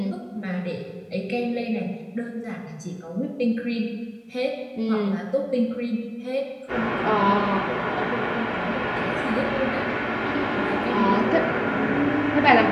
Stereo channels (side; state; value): both; identical; correlation 1.00